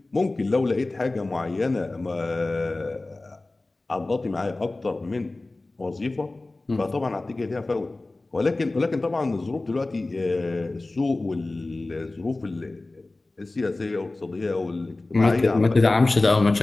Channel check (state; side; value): quieter; right; 3.0 dB